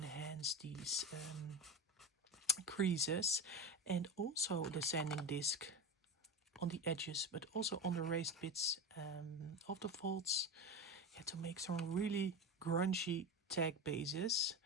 these creases, and also the sanding disc on the edges, but also on the raised bits of the folds, yeah, to make some really grungy tag bases.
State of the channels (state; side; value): normal; both; correlation 0.21